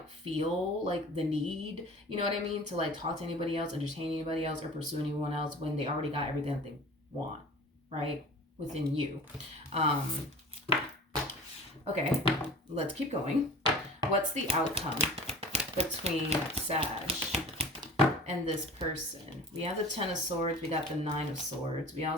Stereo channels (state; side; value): normal; both; correlation 0.40